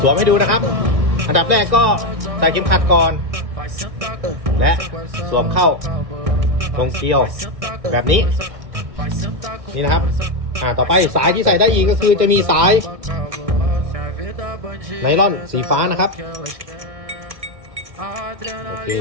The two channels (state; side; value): late; left; 1.6 ms